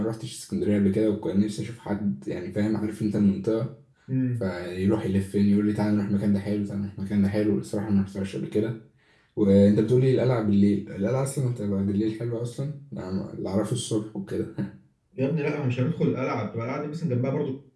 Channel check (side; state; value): both; identical; correlation 1.00